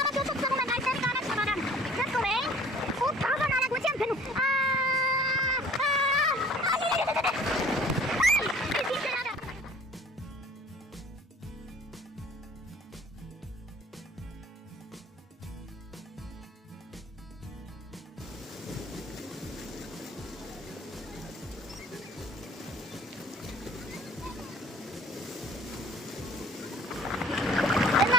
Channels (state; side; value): normal; both; correlation 0.51